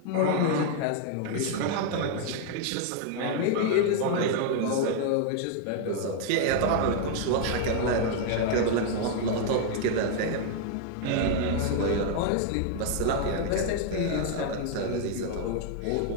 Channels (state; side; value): different; both; correlation 0.00